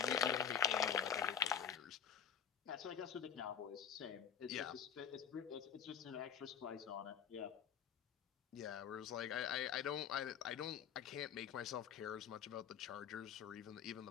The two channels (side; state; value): right; quieter; 8.4 dB